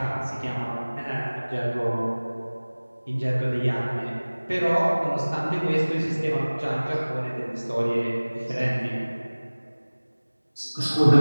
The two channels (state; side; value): inverted; both; correlation -1.00